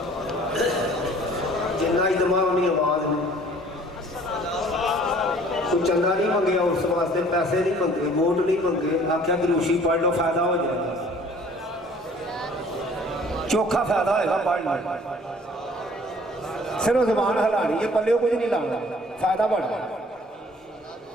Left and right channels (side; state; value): both; normal; correlation 0.53